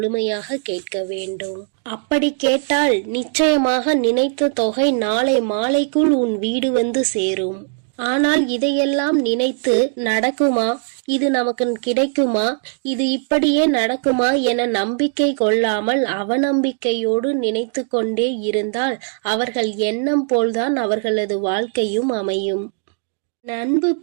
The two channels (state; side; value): silent; left; digital silence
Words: கேட்க வேண்டும். அப்படி கேட்டால் நிச்சயமாக நினைத்த தொகை நாளை மாலைக்குள் உன் வீடு வந்து சேரும். ஆனால் இதையெல்லாம் நினைத்து நடக்குமா, இது நமக்கு கிடைக்குமா, இது இப்படியே நடக்குமா என நம்பிக்கை கொள்ளாமல் அவநம்பிக்கையோடு நினைத்து கொண்டே இருந்தால் அவர்கள் எண்ணம் போல்தான் அவர்களது வாழ்க்கையும் அமையும். அன்பு